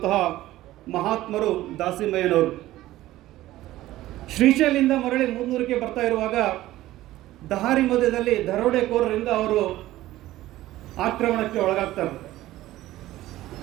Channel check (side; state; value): left; quieter; 15.6 dB